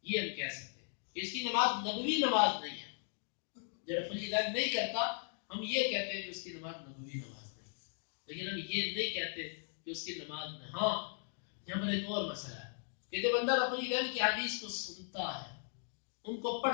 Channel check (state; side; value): silent; right; 53 dB below the other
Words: یہ ہم کہہ سکتے ہیں اس کی نماز نبوی نماز نہیں ہے. جو رفع الیدین نہیں کرتا ہم یہ کہتے ہیں کہ اس کی نماز نبوی نماز نہیں, لیکن ہم یہ نہیں کہتے کہ اس کی نماز نہیں. ہاں یہاں پر ایک اور مسئلہ ہے کہ جب بندہ رفع الیدین کی حدیث کو سنتا ہے, ان کو